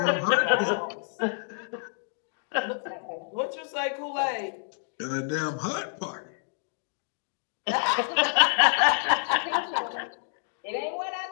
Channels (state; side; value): silent; right; digital silence